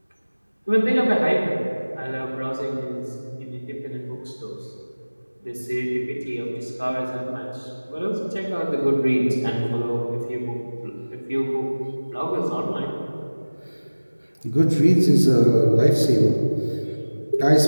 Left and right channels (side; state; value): both; inverted; correlation -1.00